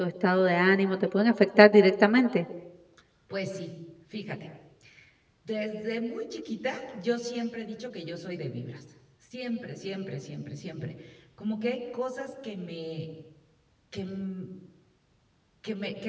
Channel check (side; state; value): both; identical; correlation 1.00